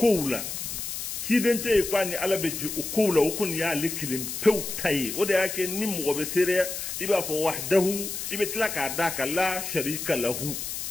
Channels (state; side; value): noise; left; hiss, 5 dB below the sound